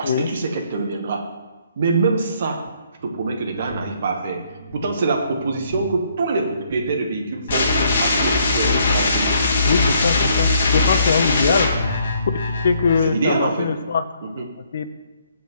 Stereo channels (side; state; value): both; inverted; correlation -0.67